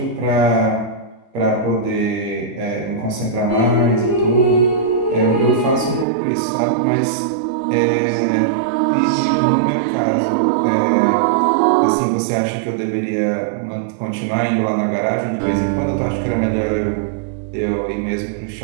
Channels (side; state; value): left; drops out; at 6.1 s